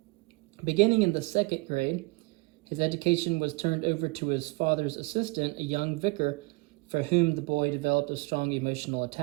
Beginning in the second grade, his education was turned over to his father's assistant, a young vicar, for whom the boy developed a strong emotional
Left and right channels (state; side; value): quieter; left; 27.1 dB